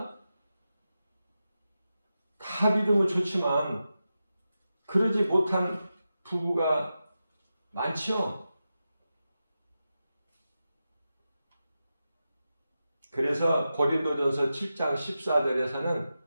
다 믿으면 좋지만 그러지 못한 부부가 많죠. 그래서 고린도전서 7장 14절에서는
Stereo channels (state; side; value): inverted; both; correlation -0.91